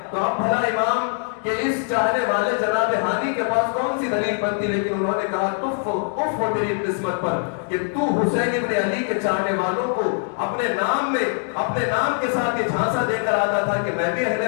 تو اب بھلا امام کہ اس چاہنے والے جناب ہانی کے پاس کون سی دلیل بنتی، لیکن انہوں نے کہا اف ہو تیری قسمت پر کہ تو حسین ابن علی کے چاہنے والوں کو اپنے نام میں اپنے نام کے ساتھ یہ جھانسا دے کر آتا تھا کہ میں بھی اہل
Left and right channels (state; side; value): silent; right; 58 dB below the other